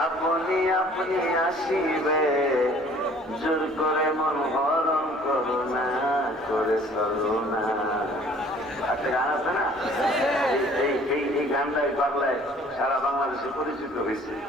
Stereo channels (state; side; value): normal; both; correlation 0.54